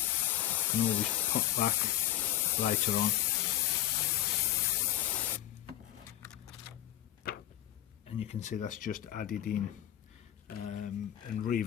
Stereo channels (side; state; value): right; quieter; 13.2 dB